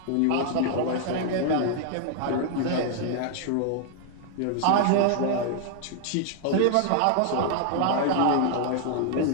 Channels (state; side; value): different; both; correlation 0.00